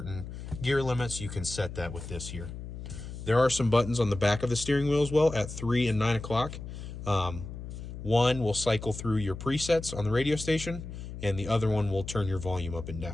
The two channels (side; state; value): left; noise; hum, 10 dB below the sound